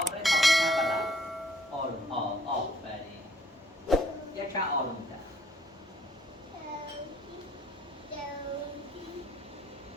تا بکنم بلا آروم آفرین یک چند آروم تر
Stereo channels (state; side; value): normal; both; correlation 0.64